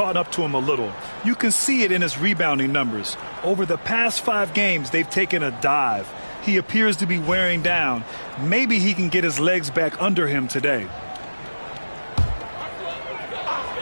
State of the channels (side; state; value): both; inverted; correlation -1.00